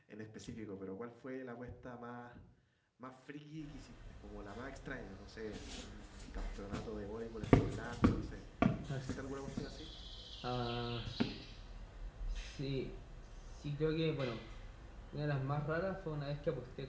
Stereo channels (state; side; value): identical; both; correlation 1.00